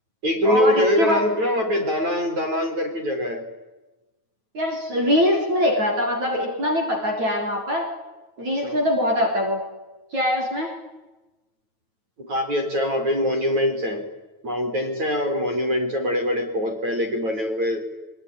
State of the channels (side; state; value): left; late; 9.1 ms